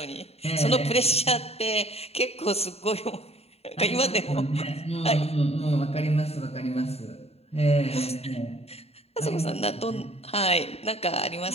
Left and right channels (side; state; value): right; late; 0.30 ms